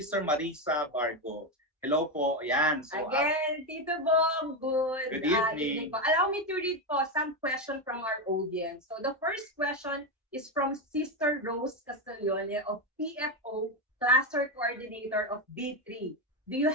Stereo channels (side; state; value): both; normal; correlation 0.11